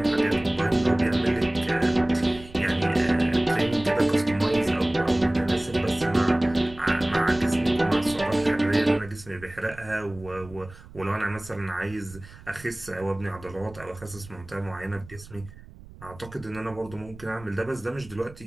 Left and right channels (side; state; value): right; noise; rumble, 19 dB below the sound